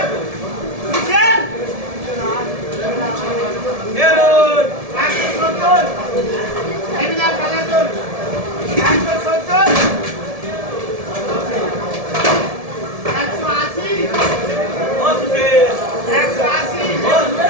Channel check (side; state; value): left; late; 1.7 ms